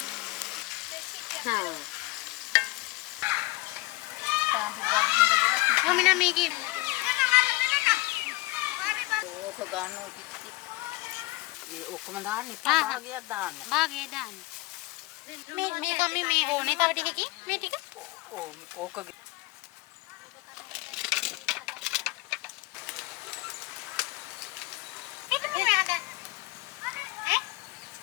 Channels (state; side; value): quieter; right; 21.6 dB